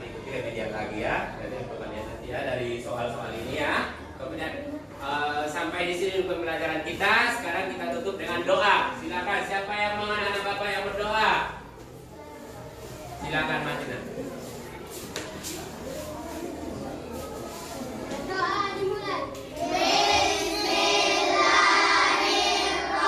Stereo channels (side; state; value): both; identical; correlation 1.00